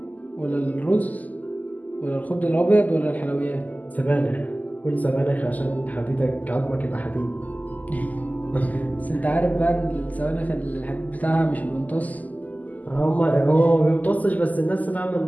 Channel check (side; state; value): right; late; 0.079 ms